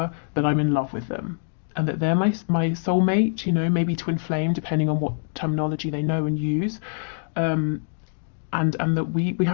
that I'm in love with them, and that they're my soulmate, you know, maybe twin flame, depending on what terminology they know and use. And and that we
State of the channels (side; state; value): right; silent; digital silence